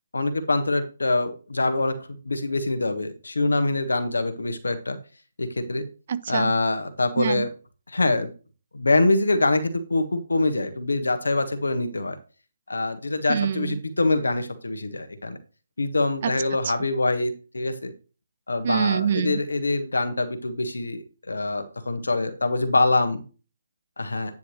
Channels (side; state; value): both; inverted; correlation -0.89